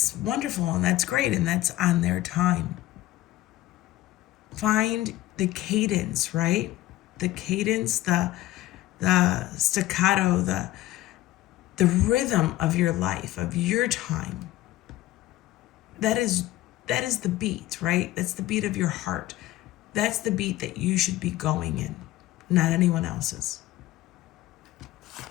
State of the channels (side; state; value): right; quieter; 15.7 dB